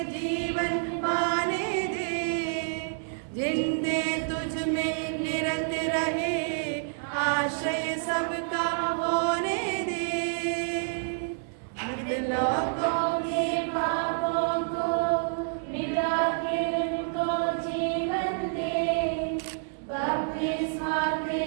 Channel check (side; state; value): left; silent; digital silence